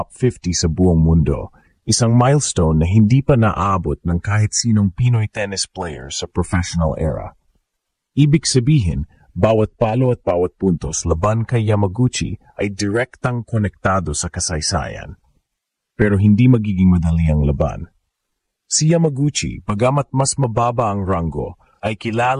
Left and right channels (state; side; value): identical; both; correlation 1.00